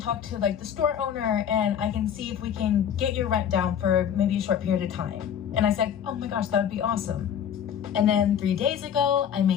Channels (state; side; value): quieter; right; 8.8 dB